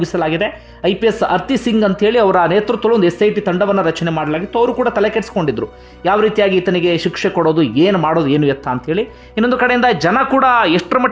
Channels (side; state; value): both; identical; correlation 1.00